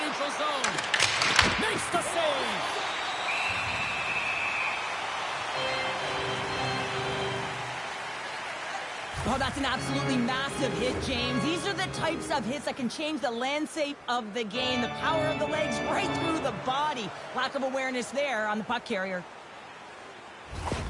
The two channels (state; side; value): identical; both; correlation 1.00